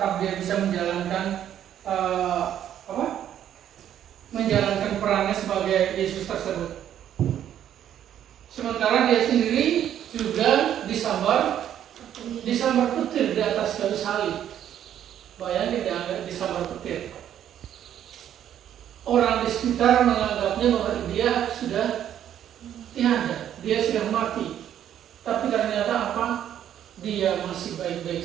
dia bisa menjalankan menjalankan perannya sebagai Yesus tersebut. Sementara dia sendiri juga disambar petir di atas kayu salib. Bayangin dia disambar petir. Orang di sekitar menganggapnya bahwa dia sudah tiada, dia sudah mati. Tapi ternyata apa? Dia masih baik-baik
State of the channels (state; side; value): quieter; left; 10.4 dB